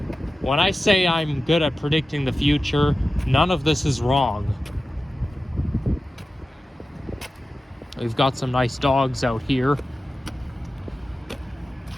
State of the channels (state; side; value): normal; both; correlation 0.94